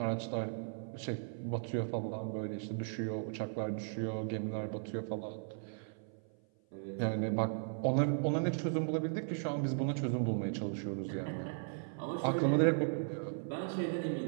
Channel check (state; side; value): silent; left; 53 dB below the other